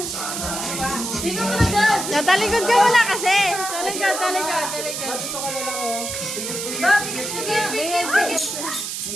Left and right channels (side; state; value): right; noise; hiss, 5 dB below the sound